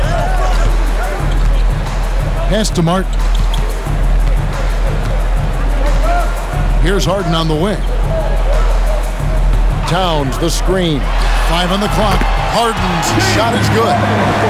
Pass to Martin. Here's Harden on the wing. Towns, the screen. 5 on the clock. Harden's shot is good.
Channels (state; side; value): identical; both; correlation 1.00